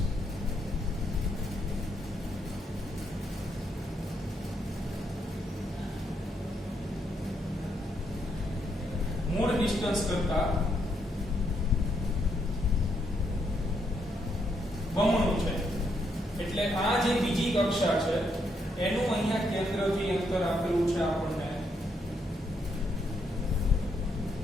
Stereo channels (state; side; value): normal; both; correlation 0.76